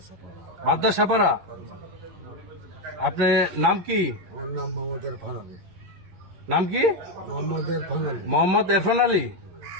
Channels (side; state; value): left; late; 11 ms